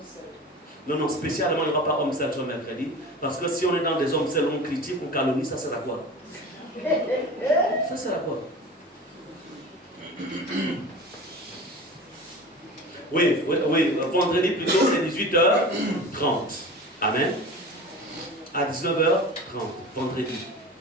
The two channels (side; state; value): both; normal; correlation 0.35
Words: Non, spécialement, il n'y aura pas homme seul sur mercredi. Parce que si on est dans des hommes seuls, on critique, on calomnie, ça sert à quoi? Ça sert à quoi? Oui, vendredi plutôt, c'est 18h30. Amen. À 19h30, vendredi.